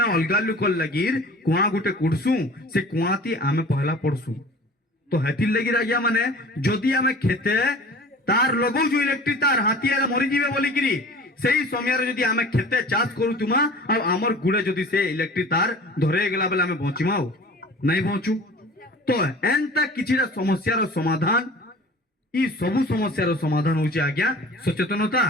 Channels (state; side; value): normal; both; correlation 0.43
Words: अलगा लुकल लगीर कुआ गुटे कुडसु से कुआती आमे पहला पड़सु तो हेतिल लगीर आज्ञा माने जदी आमे खेते तार लगौ जो इलेक्ट्रिक तार हाथी आले मरि जिवे बोली किरी सेही समय रे जदी आमे खेते चाष करू तुमा आ हमर गुडे जदी से इलेक्ट्रिक तार धरे गेला बेले आमे बचिमाओ नहीं बचू तो एंता किछिरा समस्या रो समाधान ई सबु समस्या रो समाधान होचे आज्ञा सचेतनता